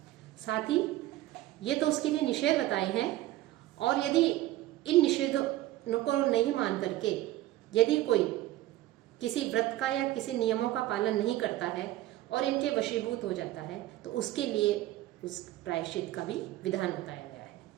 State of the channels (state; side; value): quieter; left; 15.6 dB